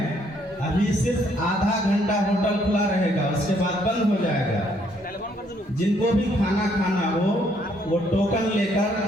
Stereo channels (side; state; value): both; normal; correlation 0.68